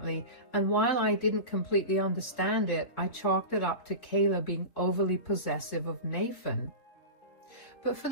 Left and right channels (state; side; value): late; right; 3.8 ms